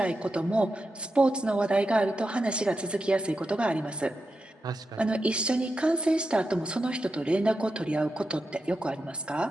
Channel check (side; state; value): both; normal; correlation 0.89